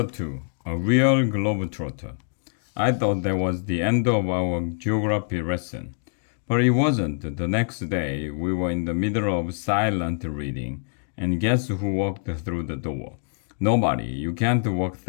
2 A Real Globetrotter. I thought that was the end of our geography lesson. But it wasn't. The next day, we were in the middle of silent reading, and guess who walked through the door? Nobody. You can't walk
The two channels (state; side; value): silent; right; digital silence